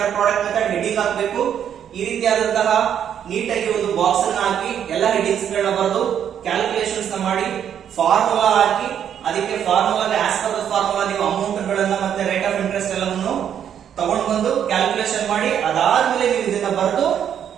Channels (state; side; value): quieter; left; 9.1 dB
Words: product method heading ಹಾಕಬೇಕು ಈ ರೀತಿಯಾದಂತಹ ನೀಟಾಗಿ ಒಂದು ಬಾಕ್ಸ್ ಅನ್ನು ಹಾಕಿ ಎಲ್ಲ ಹೆಡಿಂಗ್ಸ್ ಗಳನ್ನ ಬರೆದು ಕ್ಯಾಲ್ಕುಲೇಷನ್ಸ್ ನ ಮಾಡಿ ಫಾರ್ಮುಲಾ ಹಾಕಿ ಅದಕ್ಕೆ ಫಾರ್ಮುಲಾಗೆ ಆಸ್ ಪರ್ ದ ಫಾರ್ಮುಲಾ ನೀವು ಅಮೌಂಟ್ ಗಳನ್ನ ಮತ್ತೆ ರೇಟ್ ಆಫ್ ಇಂಟ್ರೆಸ್ಟ್ ಎಲ್ಲವನ್ನು ತಗೊಂಡು ಬಂದು ಕ್ಯಾಲ್ಕುಲೇಷನ್ ಮಾಡಿ ಅದಾದ್ಮೇಲೆ ನೀವು ಇದನ್ನ ಬರೆದು